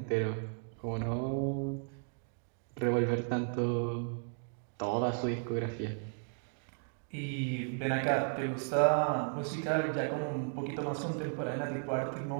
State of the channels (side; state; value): left; silent; 55 dB below the other